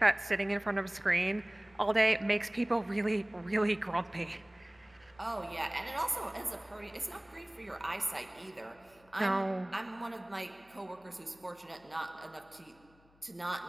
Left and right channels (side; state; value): left; noise; hum, 30 dB below the sound